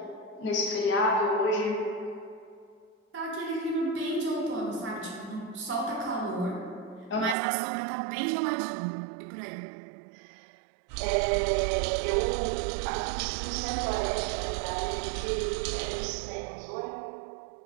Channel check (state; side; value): drops out; left; at 7.4 s